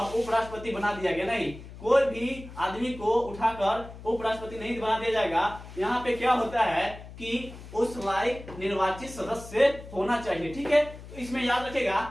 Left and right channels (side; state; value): left; noise; hum, 15 dB below the sound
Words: उपराष्ट्रपति बना दिया गया, नहीं, कोई भी आदमी को उठाकर उपराष्ट्रपति नहीं बना दिया जाएगा। यहाँ पे क्या होता है कि उस लायक निर्वाचित सदस्य होना चाहिए। ठीक है, तो इसमें याद रखेगा